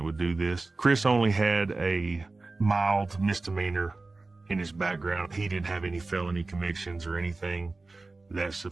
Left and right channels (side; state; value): left; quieter; 3.5 dB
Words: would do this. Chris only had a mild misdemeanor in his background. He didn't have any felony convictions or anything that